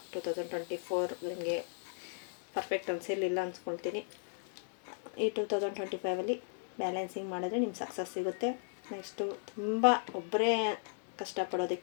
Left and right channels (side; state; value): right; silent; digital silence